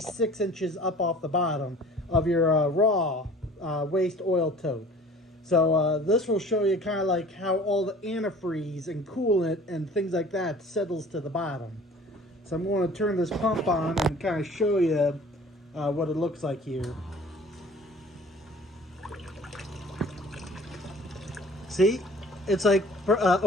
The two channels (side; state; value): both; normal; correlation 0.47